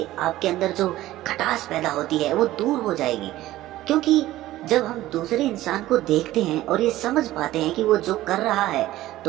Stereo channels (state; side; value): quieter; left; 15.5 dB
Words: आपके अंदर जो खटास पैदा होती है वो दूर हो जाएगी। क्योंकि जब हम दूसरे इंसान को देखते हैं और ये समझ पाते हैं कि वो जो कर रहा है,